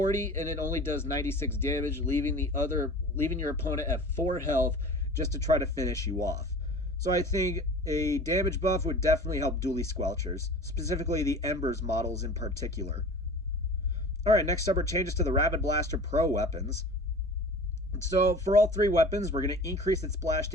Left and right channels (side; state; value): both; normal; correlation 0.40